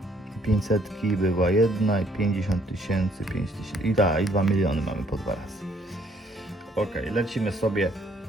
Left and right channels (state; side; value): normal; both; correlation 0.65